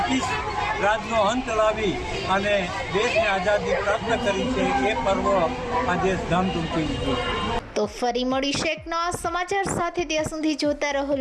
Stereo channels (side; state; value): both; identical; correlation 1.00